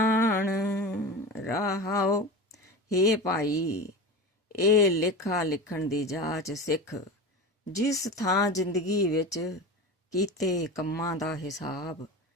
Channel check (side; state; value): both; normal; correlation 0.28